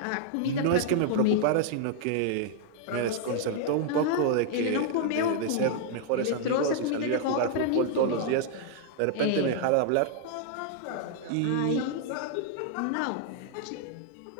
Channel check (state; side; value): different; both; correlation 0.00